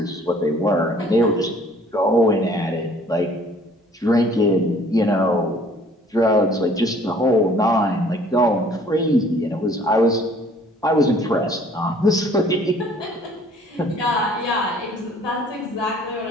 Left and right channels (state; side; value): normal; both; correlation 0.56